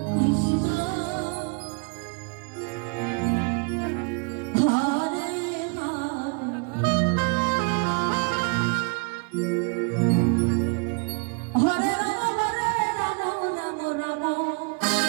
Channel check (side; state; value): left; quieter; 34.7 dB